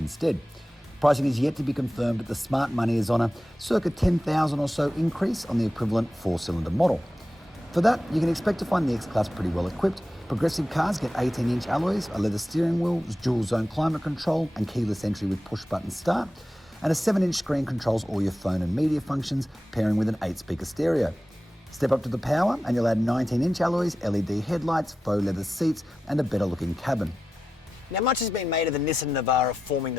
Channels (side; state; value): both; normal; correlation 0.92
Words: Pricing is yet to be confirmed, but the smart money is on a circa $10,000 or so increase on the equivalent 4-cylinder model. For that, you can expect to find the X-Class pretty well equipped. Progressive cars get 18-inch alloys, a leather steering wheel, dual-zone climate control and keyless entry with push-button start, and a 7-inch screen controls all your phone and media functions, pairing with an 8-speaker stereo. Step up to the Power and you'll add 19-inch alloys, LED headlights, faux leather seats and a better looking cabin. Now, much has been made of the Nissan Navara forming